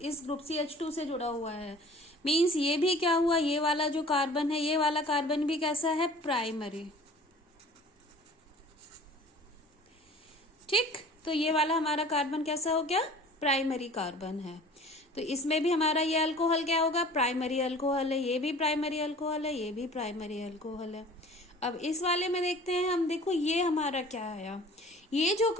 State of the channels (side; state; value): both; normal; correlation 0.46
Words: इस ग्रुप CH2 से जुड़ा हुआ है. मीन्स ये भी क्या हुआ, ये वाला जो कार्बन है, ये वाला कार्बन भी कैसा है, प्राइमरी. ठीक, तो ये वाला हमारा कार्बन कैसा हो गया, प्राइमरी कार्बन है. तो इसमें भी हमारा ये अल्कोहल क्या होगा, प्राइमरी अल्कोहल है. ये भी प्राइमरी अल्कोहल है, ये भी प्राइमरी अल्कोहल है. अब इस वाले में देखते हैं हम, देखो ये हमारा क्या आया, ये जो